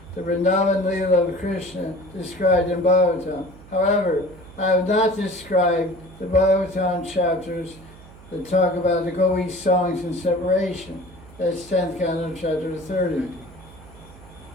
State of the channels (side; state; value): right; noise; hum, 21 dB below the sound